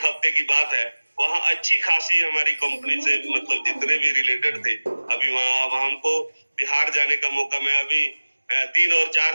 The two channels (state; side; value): inverted; both; correlation -1.00